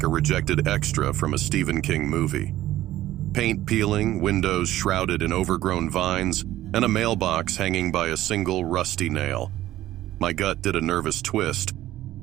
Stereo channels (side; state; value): left; quieter; 14.5 dB